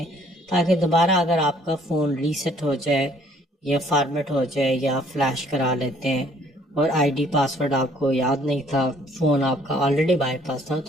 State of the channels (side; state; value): both; normal; correlation 0.61